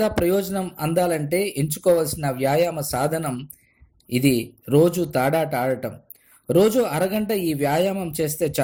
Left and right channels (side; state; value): both; identical; correlation 1.00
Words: ప్రయోజనం అందాలంటే ఎంచుకోవాల్సిన వ్యాయామ సాధనం ఇది రోజు తాడాట ఆడటం. రోజు అరగంట ఈ వ్యాయామం చేస్తే